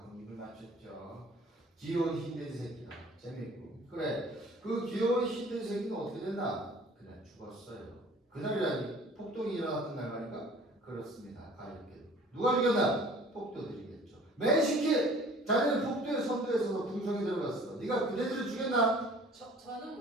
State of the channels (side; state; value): both; normal; correlation 0.50